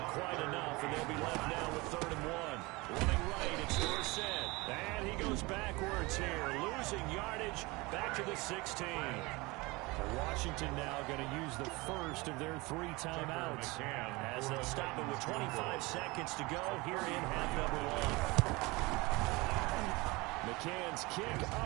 quite enough, and they'll be left now with 3rd and 1. Running right, it's Dorsett. And he goes backwards here, losing yardage back to the 16. Washington now going to use the first of their 3 timeouts as they'll stop it with 25 seconds to go here in half number 1. McCann's kick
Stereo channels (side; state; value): left; quieter; 23.7 dB